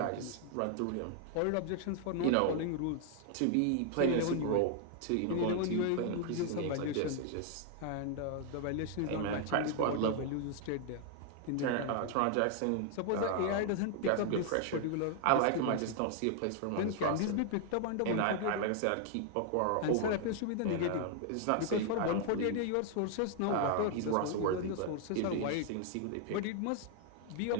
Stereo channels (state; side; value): different; both; correlation 0.00